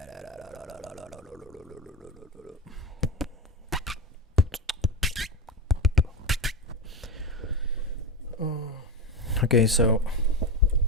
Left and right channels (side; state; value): both; normal; correlation 0.17